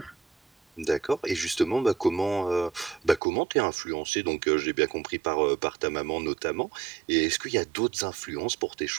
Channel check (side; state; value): left; drops out; at 3.2 s